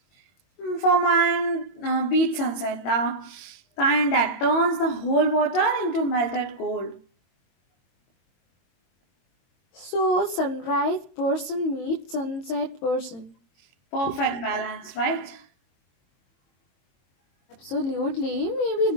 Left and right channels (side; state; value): right; late; 22 ms